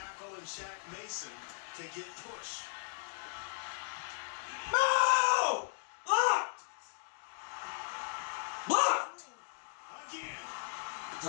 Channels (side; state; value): right; silent; digital silence